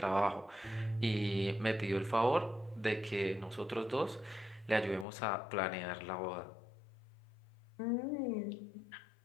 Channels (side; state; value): right; drops out; at 5.1 s